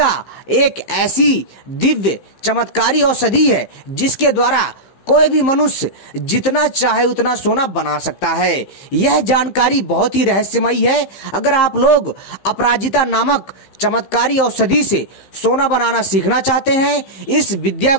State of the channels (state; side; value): late; right; 15 ms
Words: एक ऐसी दिव्य चमत्कारी औषधि है जिसके द्वारा कोई भी मनुष्य जितना चाहे उतना सोना बना सकता है। यह जानकारी बहुत ही रहस्यमयी है। अगर आप लोग अपराजिता नामक चमत्कारी औषधि से सोना बनाना सीखना चाहते हैं, इस विद्या